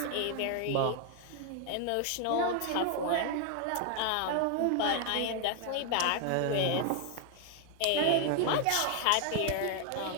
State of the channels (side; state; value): both; different; correlation 0.01